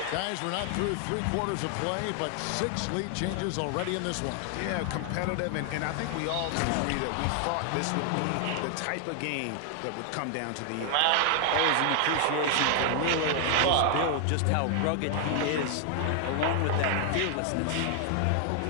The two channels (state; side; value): different; both; correlation 0.00